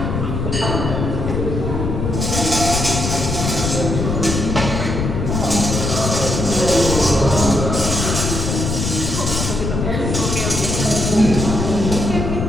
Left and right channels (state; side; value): noise; left; rumble, 2 dB below the sound